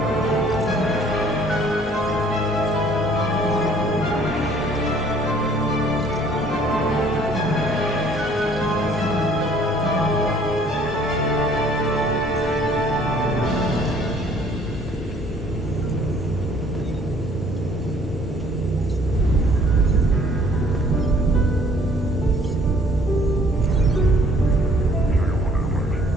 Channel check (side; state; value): both; normal; correlation 0.58